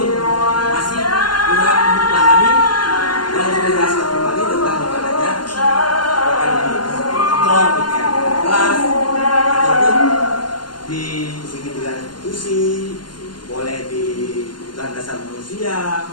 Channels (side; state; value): right; late; 0.71 ms